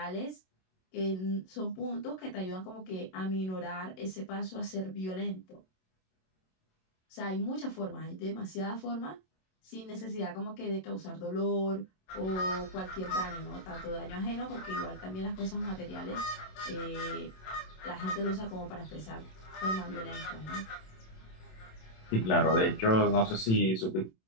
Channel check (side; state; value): right; late; 27 ms